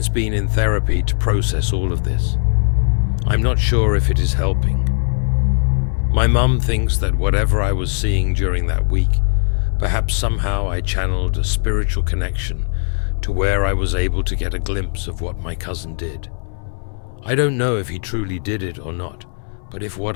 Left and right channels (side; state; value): right; silent; 65 dB below the other